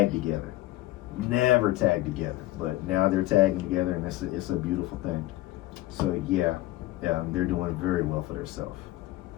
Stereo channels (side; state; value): right; quieter; 17.0 dB